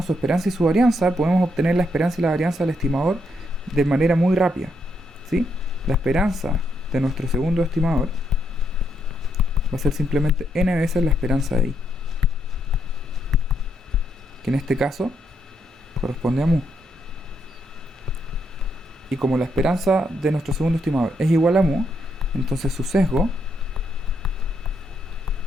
su esperanza y su varianza, podemos obtener la esperanza y la varianza del estimador de manera muy rápida, ¿sí? La esperanza de nuestro segundo estimador va a ser simplemente n veces la esperanza de i, que en este caso corresponde a mu. Y como la esperanza de nuestro segundo estimador es igual a mu, entonces su sesgo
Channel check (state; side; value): normal; both; correlation 0.77